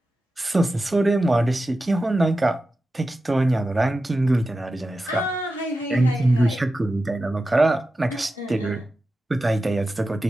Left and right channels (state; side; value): normal; both; correlation 0.92